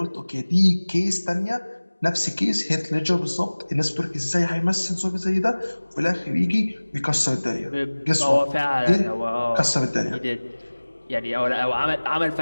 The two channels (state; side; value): inverted; both; correlation -1.00